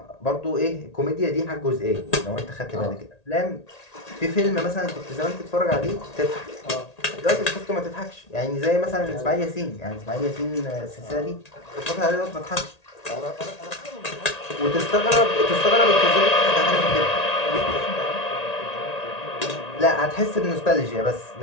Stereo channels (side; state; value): right; late; 1.8 ms